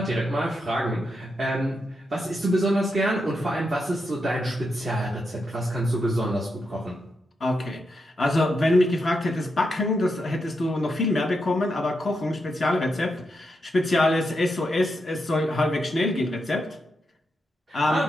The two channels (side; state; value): both; normal; correlation 0.84